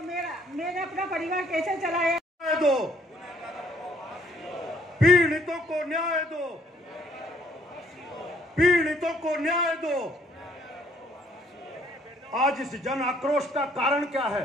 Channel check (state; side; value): normal; both; correlation 0.64